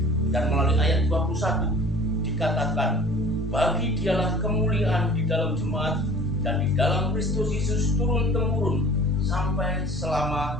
Dan melalui ayat 21 dikatakan, bagi dialah kemuliaan di dalam jemaat dan di dalam Kristus Yesus turun-temurun sampai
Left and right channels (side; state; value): both; normal; correlation 0.45